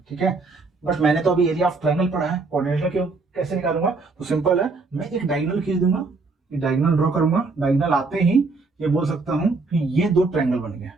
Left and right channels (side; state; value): left; quieter; 3.9 dB